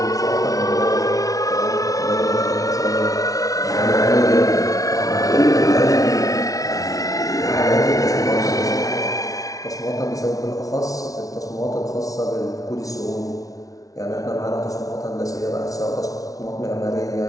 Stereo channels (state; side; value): late; right; 0.17 ms